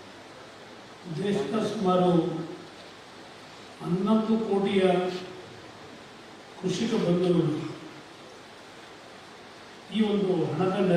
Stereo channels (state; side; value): identical; both; correlation 1.00